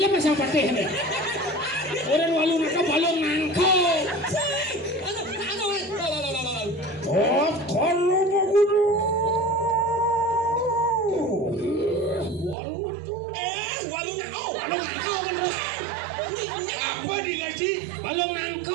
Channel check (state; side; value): drops out; left; at 12.6 s